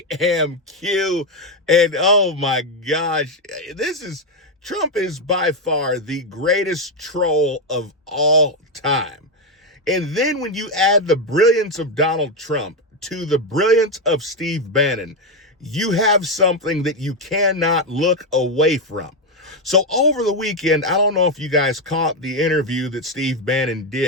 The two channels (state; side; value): normal; both; correlation 0.06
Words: am Q, and oh my gosh, Trump is by far the greatest troll of all time. And then when you add the brilliance of Donald Trump to the brilliance of Steve Bannon, you have something that you cannot look away from. So over the weekend, I don't know if you guys caught the interview that Steve Bannon